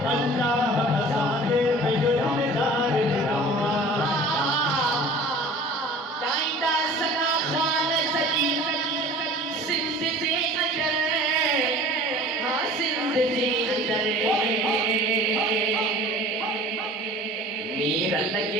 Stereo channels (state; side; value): normal; both; correlation 0.44